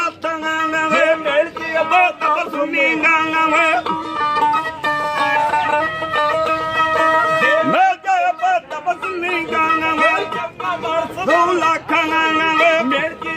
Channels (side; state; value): both; identical; correlation 1.00